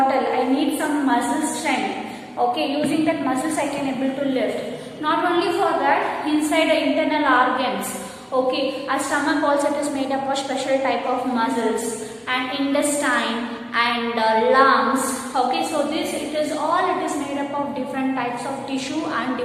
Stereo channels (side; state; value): both; identical; correlation 1.00